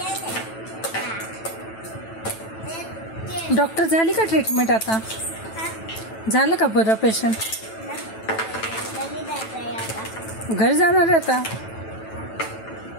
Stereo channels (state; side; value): late; right; 9.1 ms